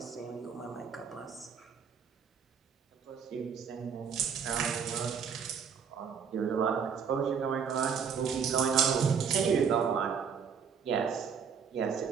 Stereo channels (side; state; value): left; quieter; 6.8 dB